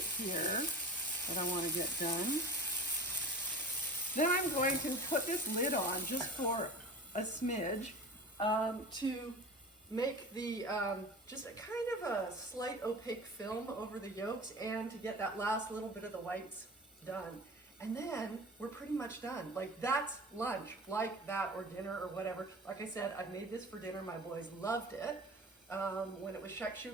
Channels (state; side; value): normal; both; correlation 0.36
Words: here that I want to get done. Then I'm going to put this lid on just for a smidge to make the, just a kind of a slight opaque film over the yolks and to get that last little bit of the whites done. And then we're pretty much done. Like that's lunch, like that, or dinner or whatever. Like I said, I made this for dinner. My boys loved it. When it was